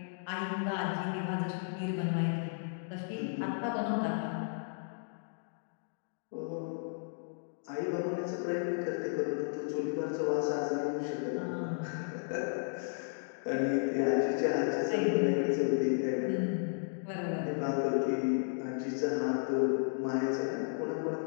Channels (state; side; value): silent; right; digital silence